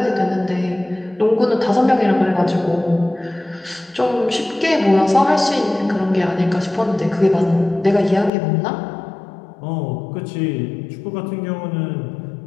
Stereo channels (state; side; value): drops out; right; at 8.3 s